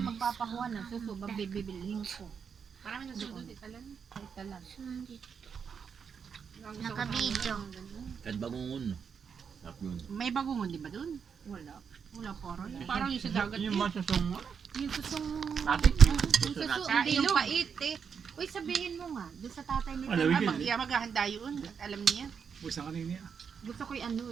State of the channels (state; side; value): quieter; left; 6.6 dB